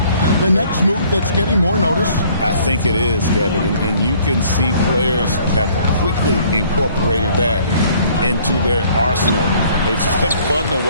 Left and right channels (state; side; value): inverted; both; correlation -0.58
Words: the next move that's getting more notice? I think it is, Kevin, and you can see players have quickly incorporated that into their arsenal. It's been fun to